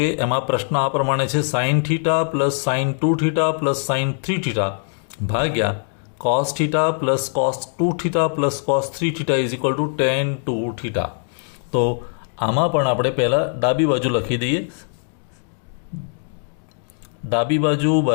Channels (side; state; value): right; silent; 61 dB below the other